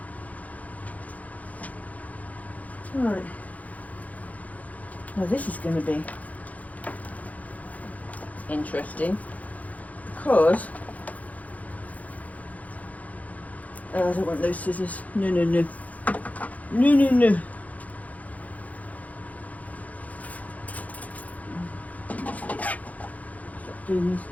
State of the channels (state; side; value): late; right; 0.073 ms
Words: Right. Now this is going to be interesting because I don't want those scissors. No, no, no. No, no, no. Stop doing this